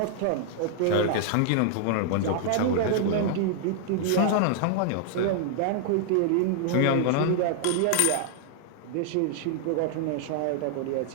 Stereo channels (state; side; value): different; both; correlation -0.01